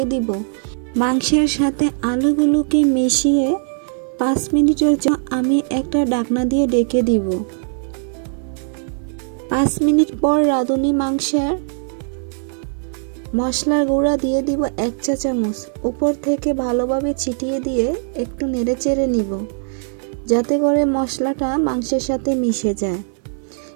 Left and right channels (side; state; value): left; silent; 60 dB below the other